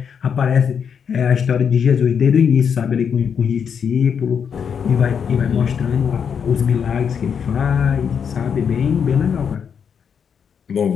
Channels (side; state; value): right; quieter; 7.1 dB